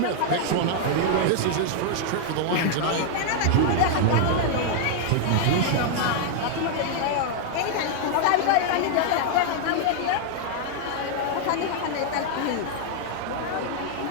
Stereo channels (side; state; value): both; different; correlation -0.01